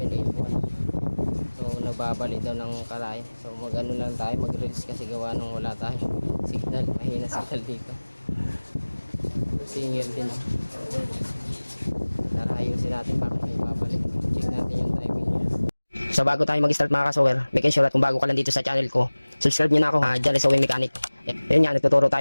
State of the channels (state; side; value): inverted; both; correlation -1.00